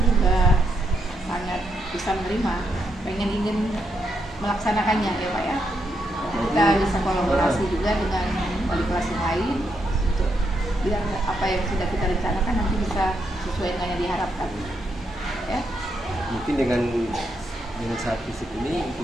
juga sangat bisa menerima, ingin melaksanakannya ya Pak ya. Kita bisa kolaborasi juga dengan wali kelas yang lain untuk biar apa yang sudah kita rencanakan nanti bisa sesuai dengan yang diharapkan. Ya. Mungkin dengan saat fisik ini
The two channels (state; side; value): normal; both; correlation 0.80